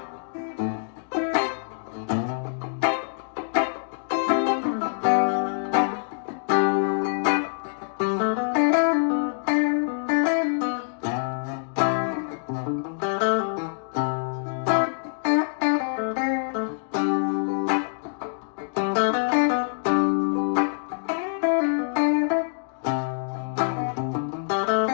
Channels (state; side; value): silent; right; digital silence